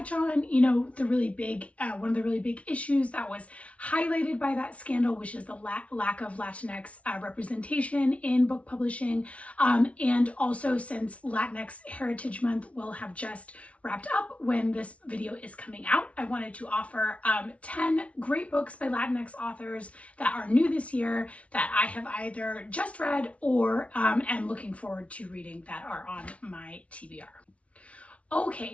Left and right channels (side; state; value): right; late; 0.064 ms